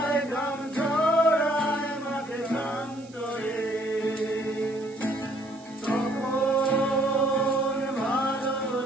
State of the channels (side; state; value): right; noise; hiss, 25 dB below the sound